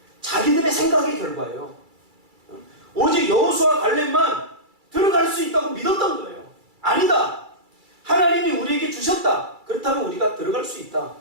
자기들의 생각의 결과예요. 오직 여호수아 갈렙만 들어갈 수 있다고 믿었던 거예요. 아니다. 하나님이 우리에게 주셨다. 그렇다면 우리가 들어갈 수 있다.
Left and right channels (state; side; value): late; left; 2.3 ms